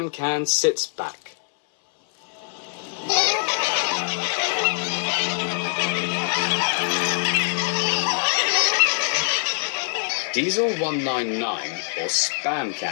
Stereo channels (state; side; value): silent; right; 63 dB below the other